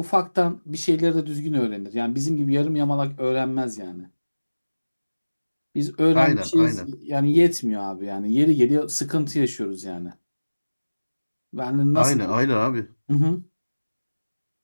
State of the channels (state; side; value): inverted; both; correlation -1.00